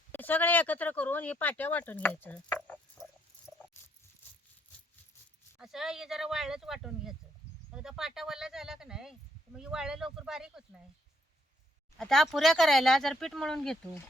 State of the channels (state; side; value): normal; both; correlation 0.71